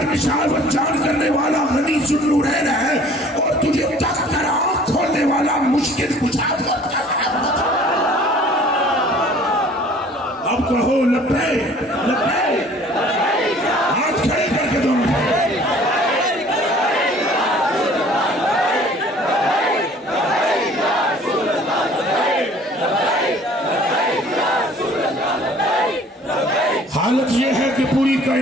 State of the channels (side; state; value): both; normal; correlation 0.52